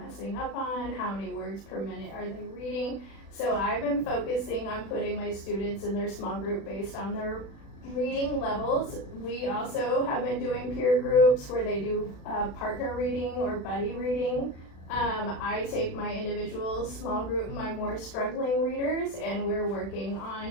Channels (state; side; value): late; right; 36 ms